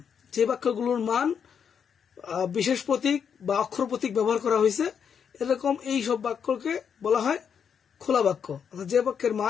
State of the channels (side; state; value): right; quieter; 7.3 dB